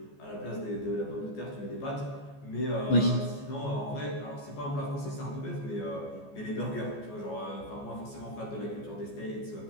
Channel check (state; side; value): late; right; 14 ms